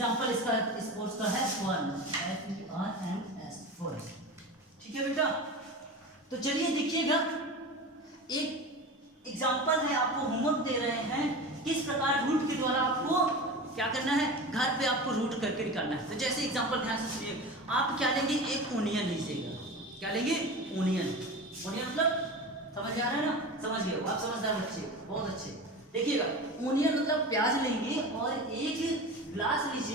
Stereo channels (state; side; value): normal; both; correlation 0.30